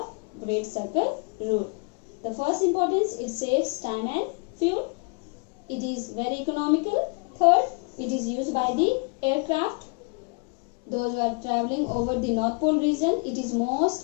great circle rule. The first importance, it saves time and fuel. It is very economical. Third, it is used by the aircraft. Those who are traveling over the North Pole region, it is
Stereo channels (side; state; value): right; quieter; 32.6 dB